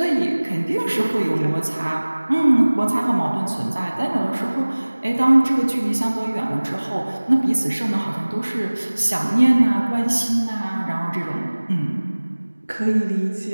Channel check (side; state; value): both; inverted; correlation -1.00